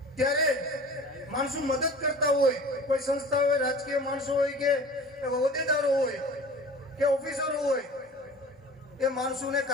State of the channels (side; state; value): both; normal; correlation 0.41